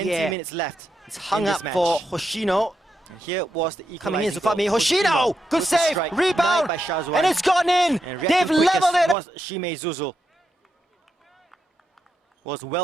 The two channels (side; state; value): both; normal; correlation 0.84